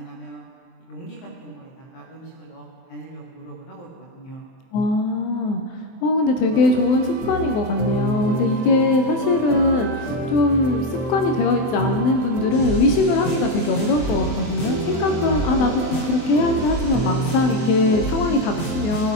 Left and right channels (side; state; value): right; late; 23 ms